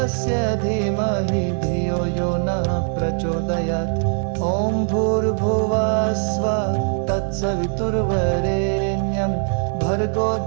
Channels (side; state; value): left; silent; 57 dB below the other